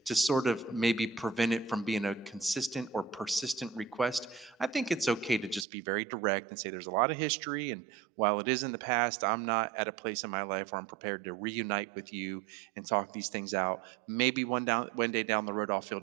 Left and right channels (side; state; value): left; drops out; at 5.7 s